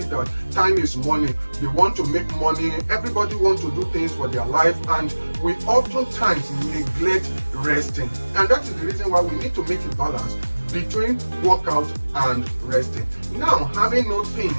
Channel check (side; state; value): both; inverted; correlation -1.00